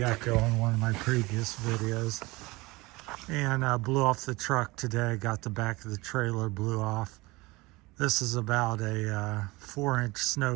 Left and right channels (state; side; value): quieter; left; 22.5 dB